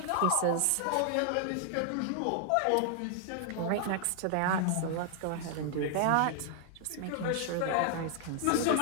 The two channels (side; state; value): both; different; correlation 0.00